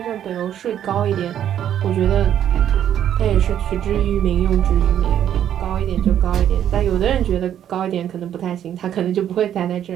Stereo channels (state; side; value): quieter; left; 10.3 dB